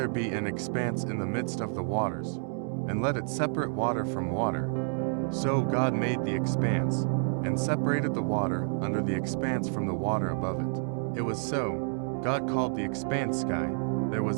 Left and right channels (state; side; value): silent; left; 58 dB below the other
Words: be an expanse in the midst of the waters, and let it separate water from water." So God made the expanse, and separated the water under the expanse from the water above it. It was so. God called the expanse sky. There